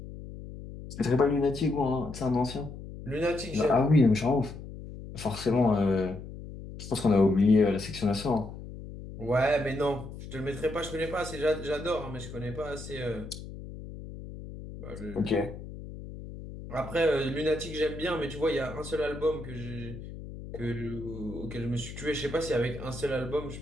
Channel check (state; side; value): noise; left; hum, 12 dB below the sound